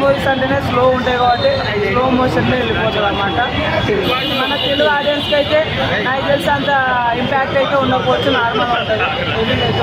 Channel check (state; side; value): identical; both; correlation 1.00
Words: మూవీస్ అంటేనే స్లో ఉంటాయి కాబట్టి స్లో మోషన్లో వెళ్ళిపోతుంది అన్నమాట. మన తెలుగు ఆడియన్స్కి అయితే నాకు తెలిసి అంత ఇంపాక్ట్ అయితే ఉండకపోవచ్చు, నార్మల్గా ఉంటుంది, ఎదిల్ అయితే